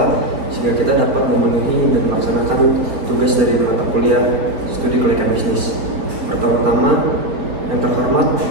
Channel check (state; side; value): late; left; 4.5 ms